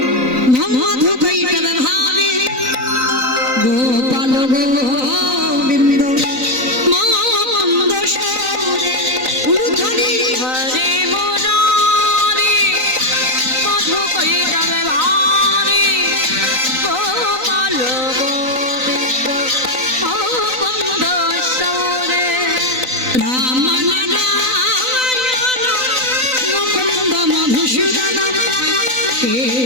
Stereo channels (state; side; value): late; left; 3.9 ms